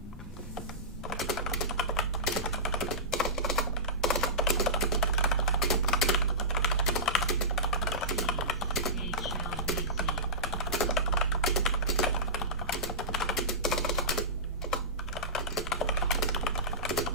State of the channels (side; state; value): both; normal; correlation -0.17